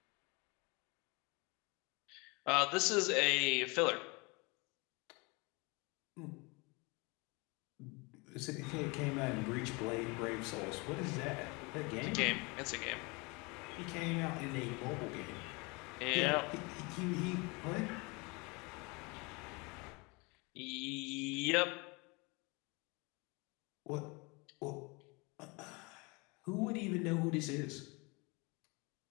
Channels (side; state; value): right; quieter; 27.9 dB